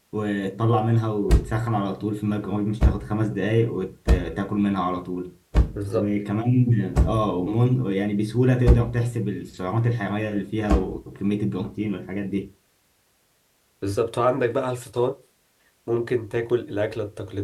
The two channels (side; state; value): both; identical; correlation 1.00